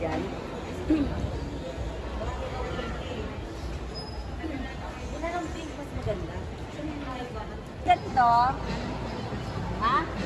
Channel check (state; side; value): identical; both; correlation 1.00